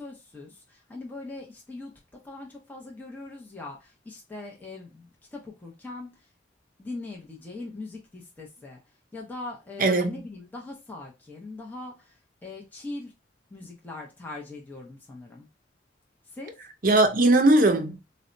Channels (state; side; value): normal; both; correlation 0.45